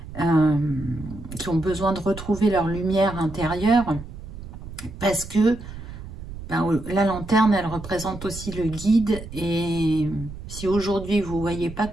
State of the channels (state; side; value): noise; right; rumble, 12 dB below the sound